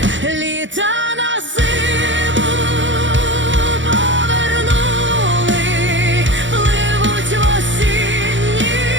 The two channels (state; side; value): late; left; 0.55 ms